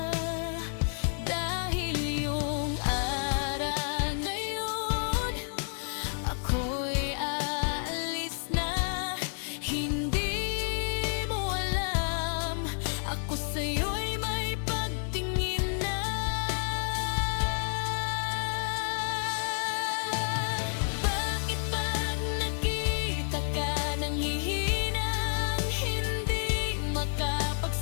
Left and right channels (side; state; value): right; silent; 55 dB below the other